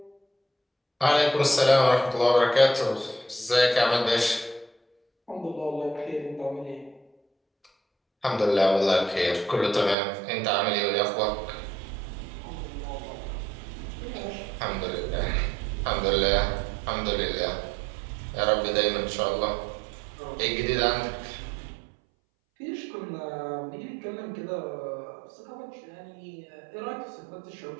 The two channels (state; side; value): drops out; left; at 10.0 s